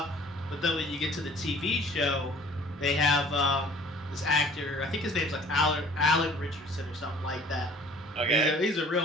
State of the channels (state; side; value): normal; both; correlation 0.51